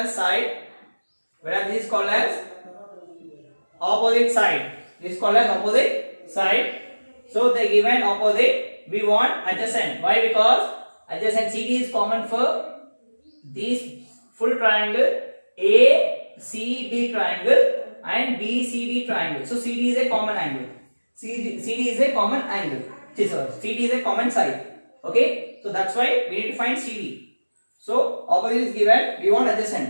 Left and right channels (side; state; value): both; inverted; correlation -1.00